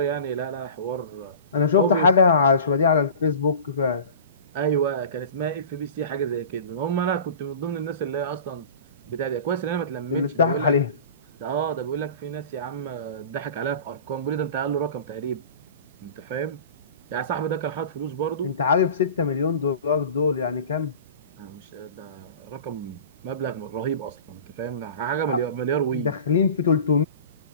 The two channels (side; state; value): both; inverted; correlation -0.38